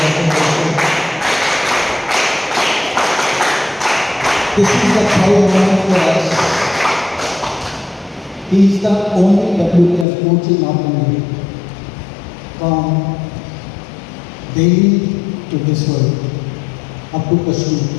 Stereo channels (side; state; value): right; drops out; at 10.1 s